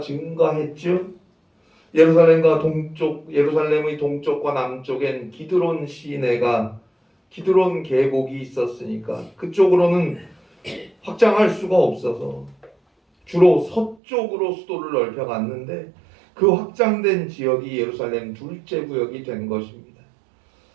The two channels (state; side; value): drops out; left; at 14.0 s